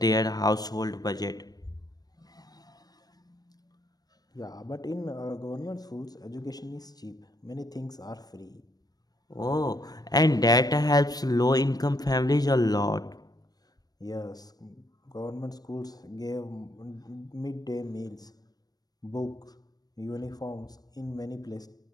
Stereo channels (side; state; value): right; late; 0.19 ms